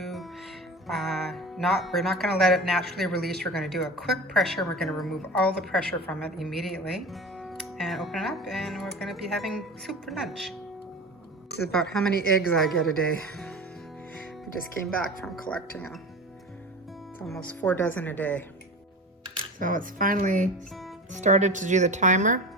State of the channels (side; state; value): both; normal; correlation 0.32